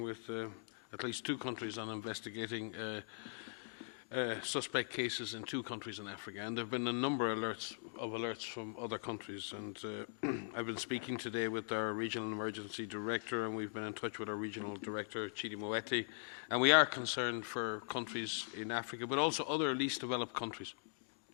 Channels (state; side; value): silent; right; digital silence